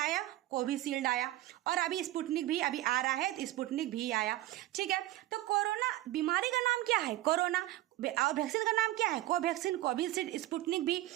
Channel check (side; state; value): left; quieter; 15.8 dB